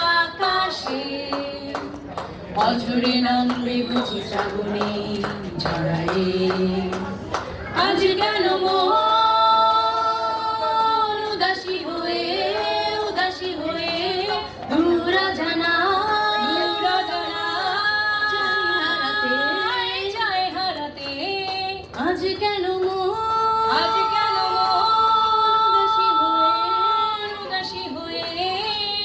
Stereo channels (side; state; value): both; identical; correlation 1.00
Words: আকাশে। অঝরে নামবে বুঝি শ্রাবণে ঝড়ায়ে। আজ কেন মন উদাসী হয়ে দূর জানা চাই হারাতে। আজ কেন উদাসী হয়ে